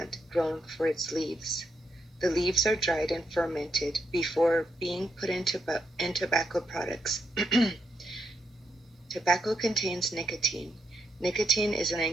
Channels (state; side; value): normal; both; correlation 0.80